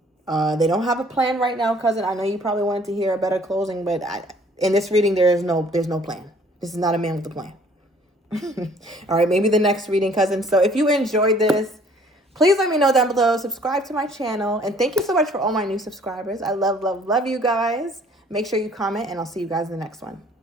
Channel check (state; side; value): normal; both; correlation 0.56